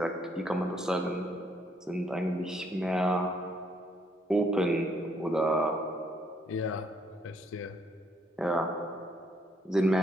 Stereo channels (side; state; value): both; normal; correlation 0.70